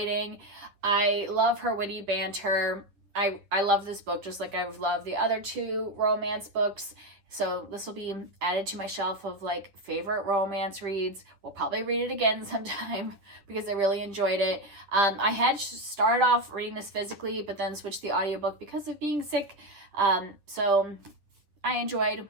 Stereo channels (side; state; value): left; late; 9.8 ms